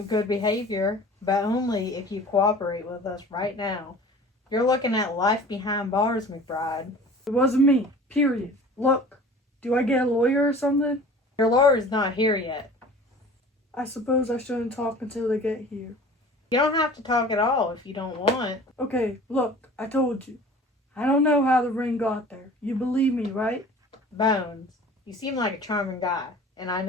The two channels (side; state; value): both; normal; correlation 0.43